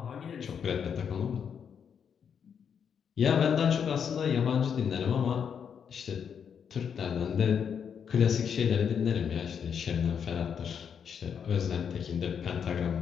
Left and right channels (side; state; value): right; quieter; 7.4 dB